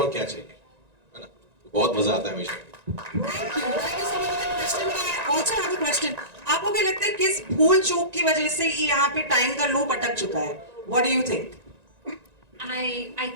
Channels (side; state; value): left; late; 1.9 ms